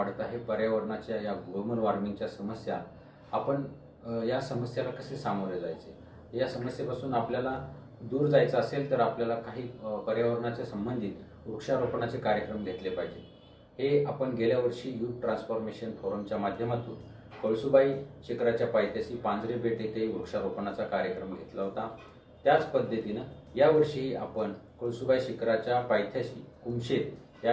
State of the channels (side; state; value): both; identical; correlation 1.00